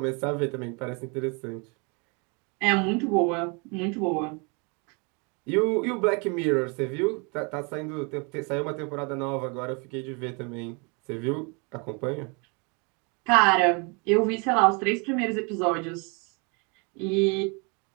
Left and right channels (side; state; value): left; quieter; 32.4 dB